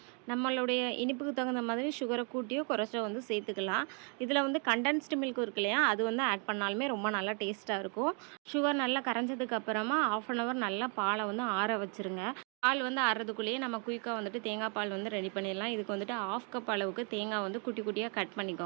நம்மளுடைய இனிப்புக்கு தகுந்த மாதிரி சுகரை கூட்டியோ குறைச்சோ சேர்த்துக்கலாம். இதில் கண்டென்ஸ்டு மில்க் இருக்கு இல்லையா, அது ஆட் பண்ணாலுமே ரொம்ப நல்லா டேஸ்ட்டாக இருக்கும். சுகர் நல்லா கரைஞ்சதுக்கு அப்புறமா 1/2 அன் ஹவர் நல்லா பாலை ஆற வச்சுருங்க. பால் ஆறுறதுக்குள்ளேயே நம்ம குயிக்காக தேங்காய் பால் ரெடி பண்ணிடலாம். இதுக்கு 1/2 கப் அளவுக்கு தேங்காய் குட்டி குட்டியாக கட்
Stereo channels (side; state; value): left; quieter; 38.3 dB